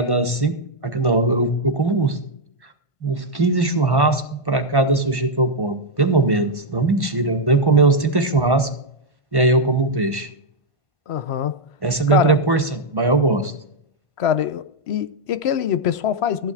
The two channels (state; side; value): late; right; 1.5 ms